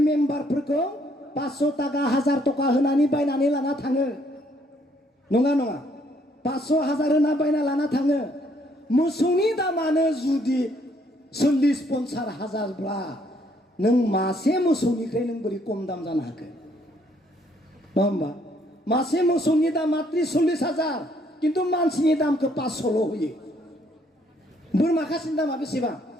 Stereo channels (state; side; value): normal; both; correlation 0.67